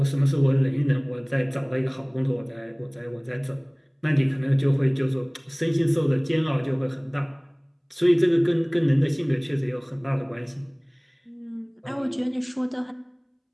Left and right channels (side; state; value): both; identical; correlation 1.00